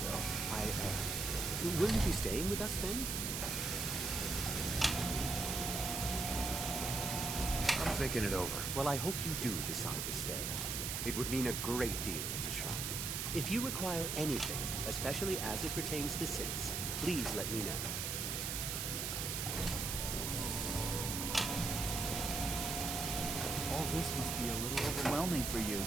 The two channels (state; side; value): noise; right; hiss, 1 dB below the sound